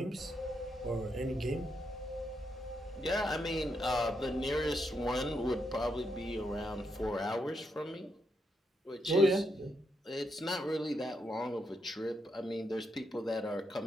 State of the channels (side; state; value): both; normal; correlation 0.81